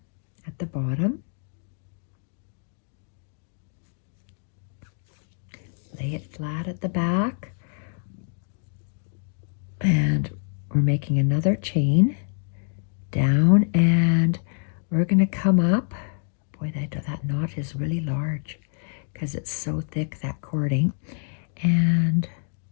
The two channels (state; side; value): silent; right; 61 dB below the other